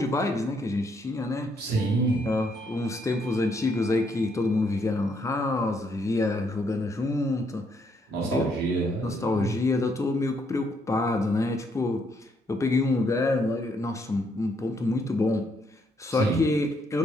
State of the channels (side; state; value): both; normal; correlation 0.73